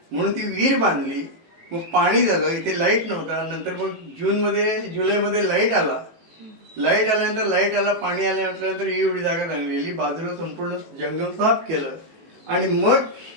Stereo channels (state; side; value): late; left; 18 ms